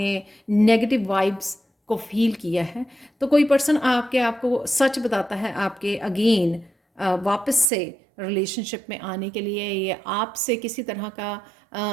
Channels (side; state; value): left; drops out; at 7.7 s